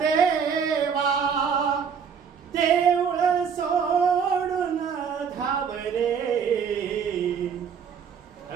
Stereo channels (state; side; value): quieter; left; 6.9 dB